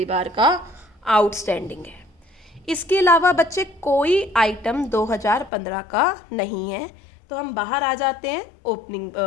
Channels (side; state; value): right; drops out; at 5.5 s